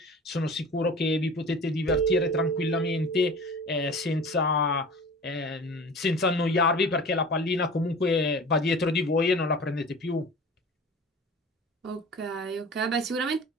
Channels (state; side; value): normal; both; correlation 0.39